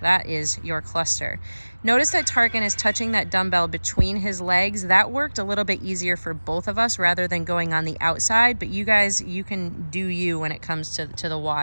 is your cluster. Notice that Tarkan is touching that dumbbell between his legs. That worked a little bit easier for both of us rather than going on the outside, but you guys, you can do you when it comes to the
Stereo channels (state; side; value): inverted; both; correlation -1.00